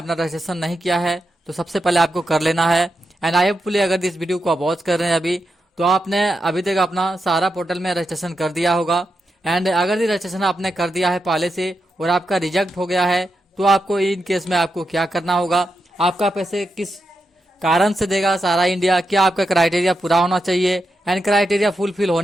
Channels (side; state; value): both; normal; correlation 0.87